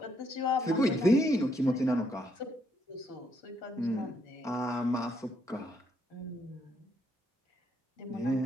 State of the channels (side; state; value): both; normal; correlation 0.74